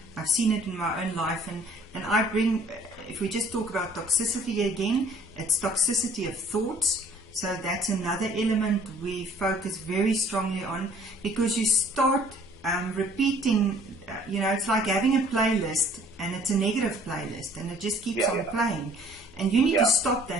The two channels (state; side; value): normal; both; correlation 0.56